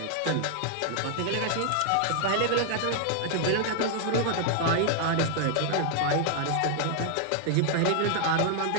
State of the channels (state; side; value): different; both; correlation 0.00